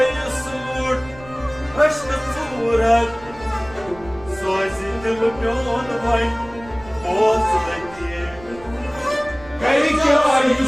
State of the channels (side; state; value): right; noise; rumble, 19 dB below the sound